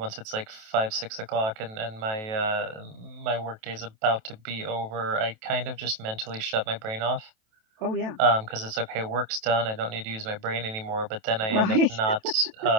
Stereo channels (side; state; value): left; late; 27 ms